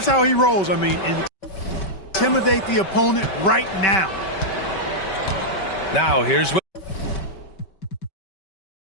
how he rolls. I mean, intimidate the opponent right now. Now here's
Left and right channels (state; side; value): late; right; 5.2 ms